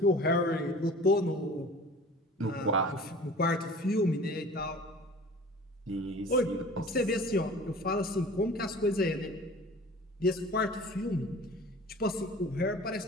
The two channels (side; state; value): both; normal; correlation 0.43